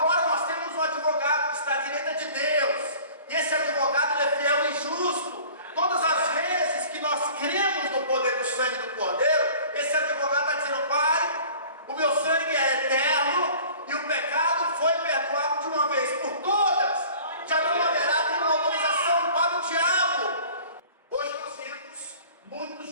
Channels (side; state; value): both; inverted; correlation -0.46